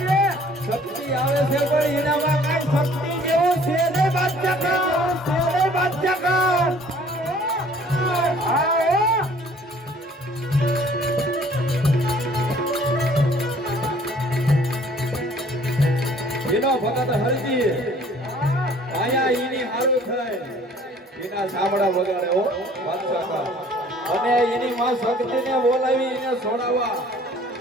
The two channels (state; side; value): normal; both; correlation 0.55